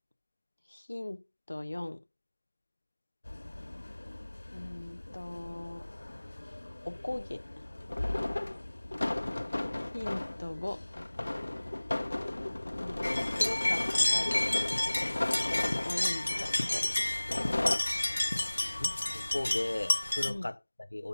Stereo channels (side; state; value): both; inverted; correlation -1.00